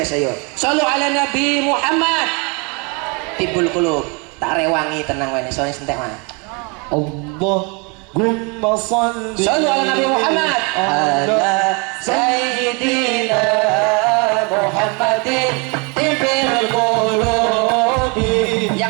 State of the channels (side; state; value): left; quieter; 31.9 dB